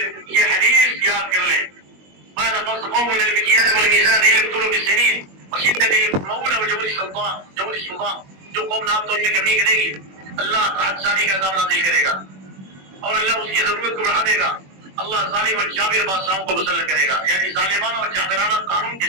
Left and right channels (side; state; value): left; late; 21 ms